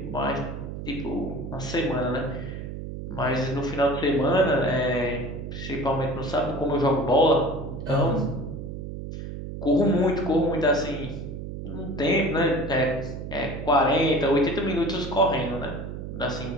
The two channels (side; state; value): right; noise; hum, 8 dB below the sound